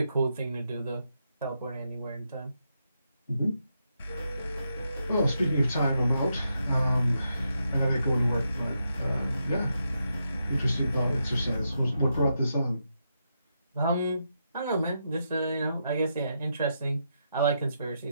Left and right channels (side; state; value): both; inverted; correlation -0.83